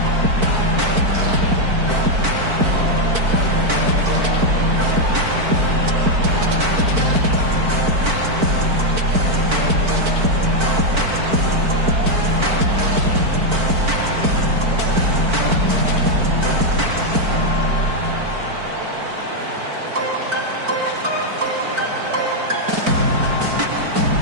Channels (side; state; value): left; late; 4.5 ms